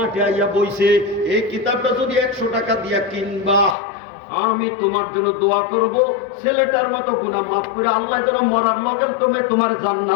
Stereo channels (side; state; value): right; drops out; at 3.8 s